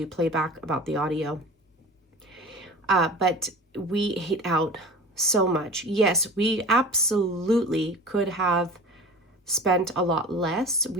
playback about the audio. But we ate out so much. Yes, we absolutely could have spent a lot less.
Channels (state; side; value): normal; both; correlation 0.37